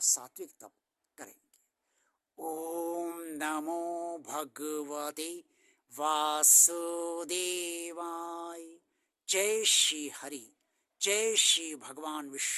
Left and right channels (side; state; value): both; identical; correlation 1.00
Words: सात्विक तप करेंगे। ओम नमो भगवते वासुदेवाय। जय श्री हरि, जय श्री भगवान